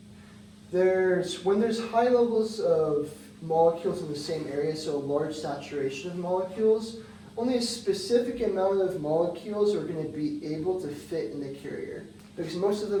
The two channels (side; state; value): both; identical; correlation 1.00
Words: there's high levels of molecules in the same area, so a large saturation of molecules, only a specific amount of molecules are going to be able to fit in the carrier, because most of